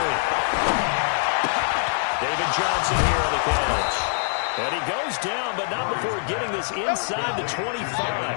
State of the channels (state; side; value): silent; right; 63 dB below the other